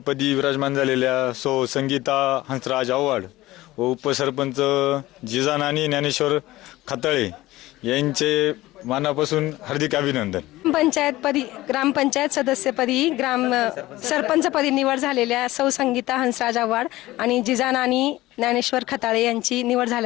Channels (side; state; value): right; quieter; 17.5 dB